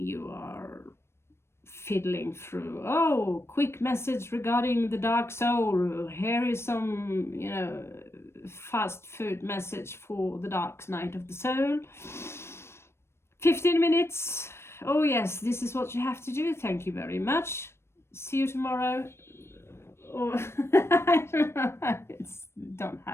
are fiddling through. Oh, quick message regarding the dark soul. Here is some, fast food message for the dark night of the soul. 15 minutes. Oh yes, this is what you have to do. Thank you very much. See you tomorrow. Or I don't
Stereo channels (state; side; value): late; right; 0.12 ms